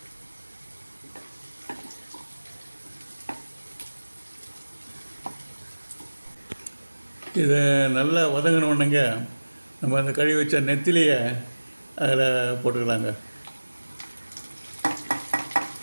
இதை நல்லா வதங்கினோடனேங்க நம்ம அந்த கழுவி வச்ச நெத்திலியை அதில் போட்டுக்கலாங்க.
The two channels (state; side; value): inverted; both; correlation -1.00